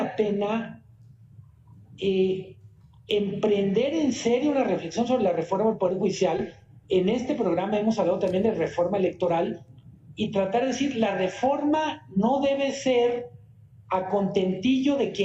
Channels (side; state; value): both; identical; correlation 1.00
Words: pena emprender en serio una reflexión sobre la reforma del Poder Judicial. En este programa hemos hablado también de reforma electoral y tratar de decir, la reforma no debe ser a contentillo de